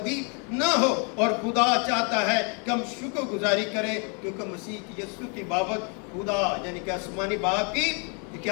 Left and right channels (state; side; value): quieter; right; 37.2 dB